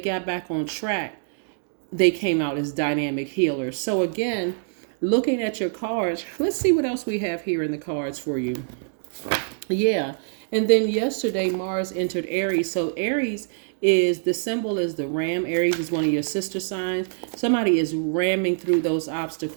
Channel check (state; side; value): silent; left; digital silence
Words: back on track, they came out as dynamic healers. So again, looking at your cards, let's see what else we have here in the cards for you. Yeah. And then yesterday, Mars entered Aries. So Aries the symbol is the ram. Aries is one of your sister signs. Somebody is ramming through those